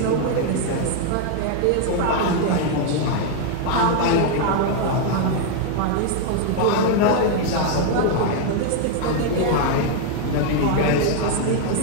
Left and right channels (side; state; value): both; different; correlation 0.00